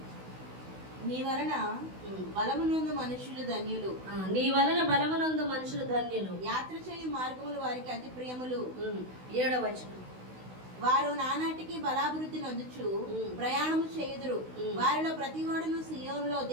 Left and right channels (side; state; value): left; late; 16 ms